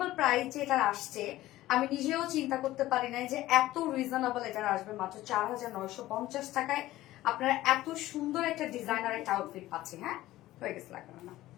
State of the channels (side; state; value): right; quieter; 15.9 dB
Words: প্রাইসে এটা আসছে, আমি নিজেও চিন্তা করতে পারি নাই যে এত রিজনেবল এটা আসবে। মাত্র 4,950 টাকায় আপনারা এত সুন্দর একটা ডিজাইনার একটা আউটফিট পাচ্ছেন। হ্যাঁ, হয়ে গেছে, লাগবে না।